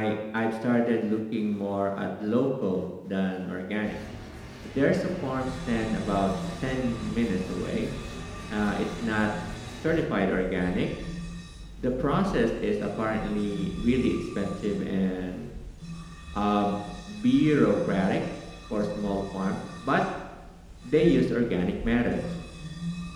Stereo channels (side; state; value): both; identical; correlation 1.00